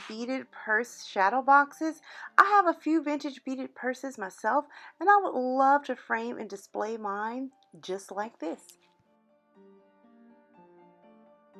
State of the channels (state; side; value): identical; both; correlation 1.00